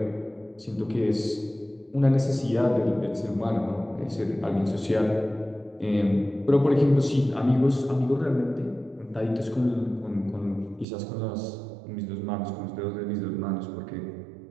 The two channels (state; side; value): drops out; left; at 10.9 s